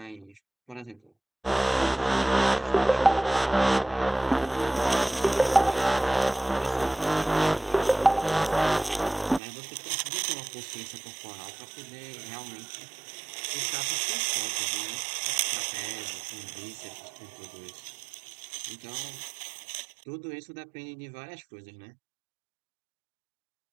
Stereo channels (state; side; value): drops out; left; at 9.4 s